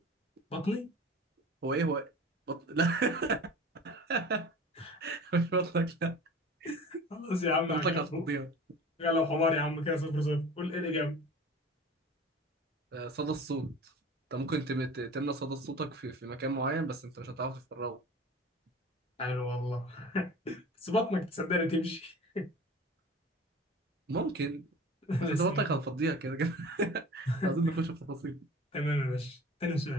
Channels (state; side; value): normal; both; correlation 0.40